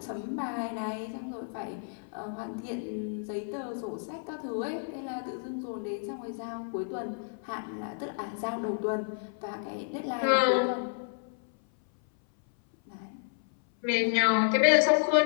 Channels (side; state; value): right; silent; 57 dB below the other